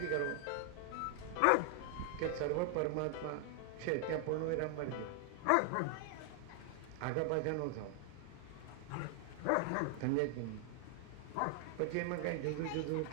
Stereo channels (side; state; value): both; different; correlation 0.00